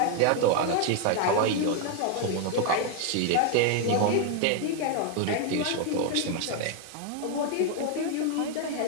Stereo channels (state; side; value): different; both; correlation 0.01